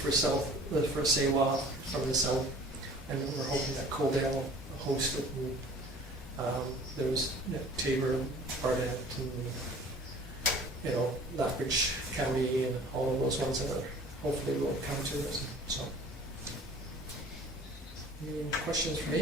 SAWA from the south, and we're hoping that Coldale will host it. And, there was Tabor, Barnett, and, you know, Lethbridge County, and all of those ones that are hopefully will come to us, so. Any questions for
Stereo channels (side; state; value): both; normal; correlation 0.48